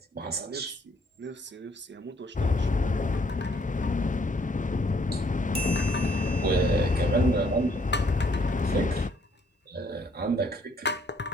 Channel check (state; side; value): normal; both; correlation 0.66